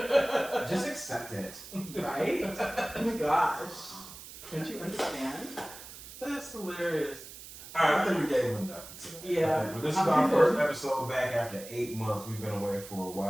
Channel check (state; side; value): noise; right; hiss, 15 dB below the sound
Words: accept it. Right? Oh my gosh. Don't you understand? That's hilarious. Alright, I think we gave him enough for today. Yeah. But this is our first episode back after 8 months. We've been away for a